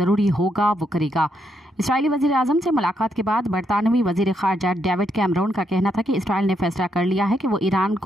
होगा वो करेगा। इसराइली वज़ीर-ए-आज़म से मुलाकात के बाद बरतानवी वज़ीर ख़ारजा डेविड कैमरून का कहना था कि इसराइल ने फैसला कर लिया है कि वो ईरान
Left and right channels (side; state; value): both; normal; correlation 0.78